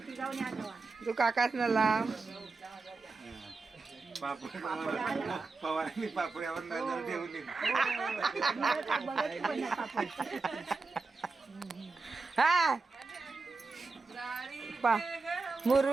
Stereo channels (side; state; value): left; quieter; 4.0 dB